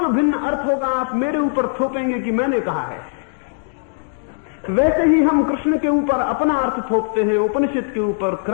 भिन्न अर्थ होगा आप मेरे ऊपर थोपेंगे कि मैंने कहा है। वैसे ही हम कृष्ण के ऊपर अपना अर्थ थोपते हैं, उपनिषद के ऊपर,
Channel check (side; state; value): right; silent; digital silence